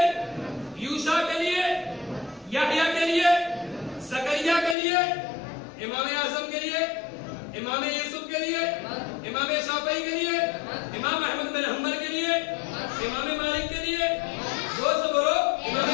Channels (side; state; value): right; drops out; at 4.8 s